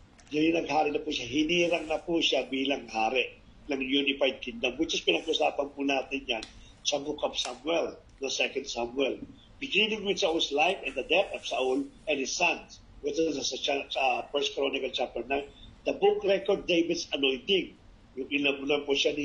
Yan yung naghari na po siya. Hinirang na po siya bilang hari ng unified kingdom, which is pinag-usapan po natin yan sa book of Samuel, the second Samuel. Beginning with Saul's life and the death of Saul and his sons, which is sa First Chronicle chapter 9. The book record David's anointing. Yung inabunan po siya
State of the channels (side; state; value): both; identical; correlation 1.00